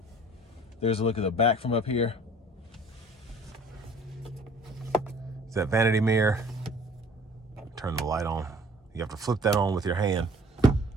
There's a look at the back from up here. It's that vanity mirror. Turn the light on. You have to flip that on with your hand.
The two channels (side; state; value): both; normal; correlation 0.52